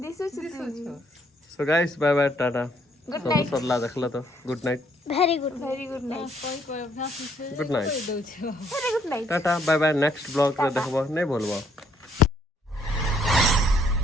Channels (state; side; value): normal; both; correlation 0.67